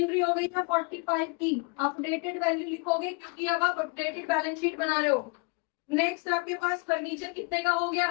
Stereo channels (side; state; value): right; quieter; 32.1 dB